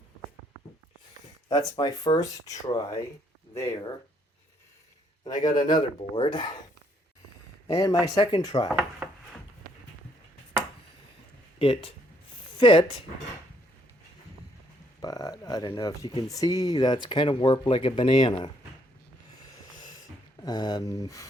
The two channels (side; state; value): both; normal; correlation 0.69